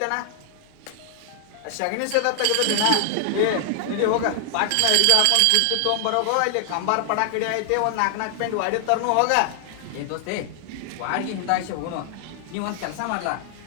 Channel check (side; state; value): both; different; correlation 0.00